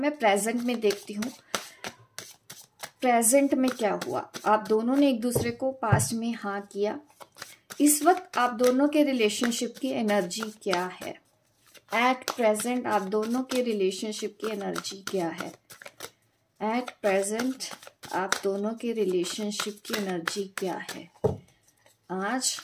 प्रेजेंट में देखती हूँ, प्रेजेंट में क्या हुआ। आप दोनों ने एक दूसरे को पास्ट में हाँ किया। इस वक्त आप दोनों के रिलेशनशिप की एनर्जी क्या है। एट प्रेजेंट आप दोनों के रिलेशनशिप की एनर्जी क्या है। एट प्रेजेंट आप दोनों के रिलेशनशिप की एनर्जी क्या है। आज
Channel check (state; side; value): identical; both; correlation 1.00